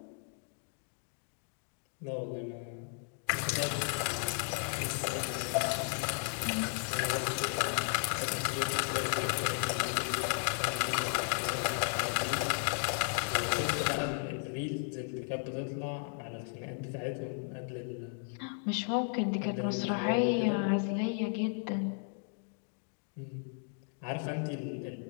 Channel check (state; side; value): silent; right; 55 dB below the other